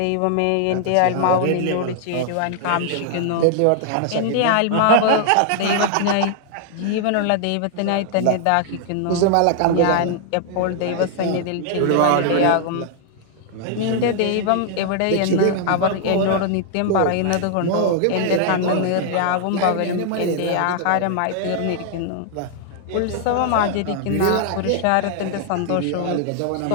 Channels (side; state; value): both; different; correlation 0.00